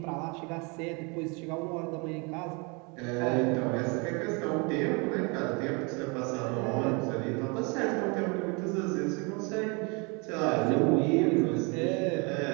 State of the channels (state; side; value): quieter; left; 30.8 dB